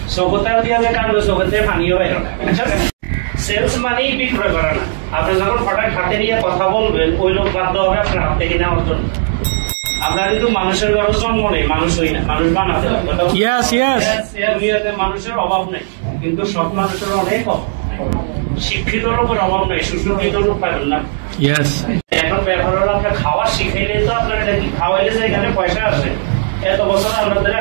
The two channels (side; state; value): left; silent; digital silence